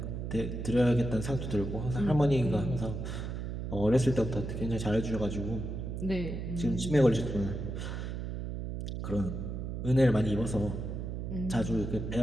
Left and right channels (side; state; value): right; noise; hum, 5 dB below the sound